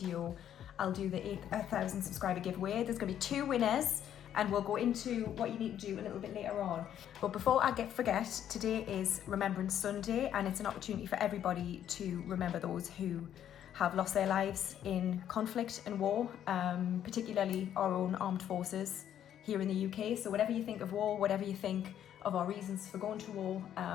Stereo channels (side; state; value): right; quieter; 10.3 dB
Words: I'll do the 8,000 subscriber giveaway. There's going to be 2 winners and we'll go into what you need to do a little bit later on. But before I forget, today is Remembrance Sunday and it's an opportunity for everybody to remember those who have lost their lives in conflict and war, particularly our own armed forces here in the UK. So whatever you think of war, whatever you think of our reasons for going to war,